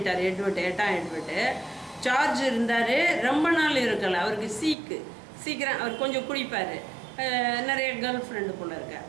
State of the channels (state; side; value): drops out; left; at 4.8 s